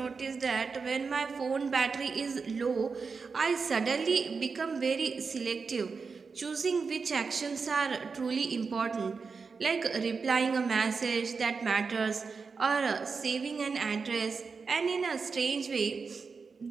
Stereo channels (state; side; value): quieter; left; 5.0 dB